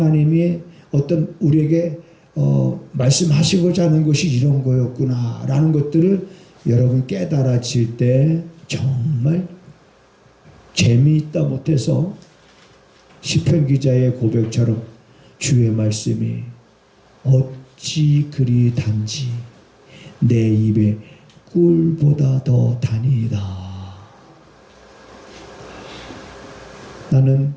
어떤 우리에게 말씀하시고자 하는 것이 이런 거였구나 라는 것들을 여러분 깨달아질 때 정말 재미있다 못해서 시편 기자의 고백처럼 주의 말씀이 어찌 그리 단지 내 입에 꿀보다 더 다니이다. 나는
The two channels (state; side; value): identical; both; correlation 1.00